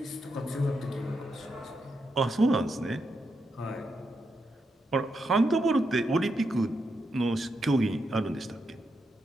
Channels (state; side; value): normal; both; correlation 0.83